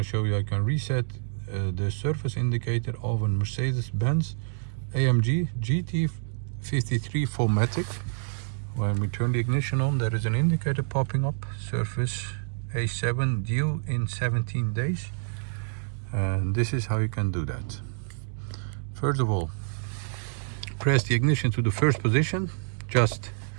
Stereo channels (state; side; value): silent; left; digital silence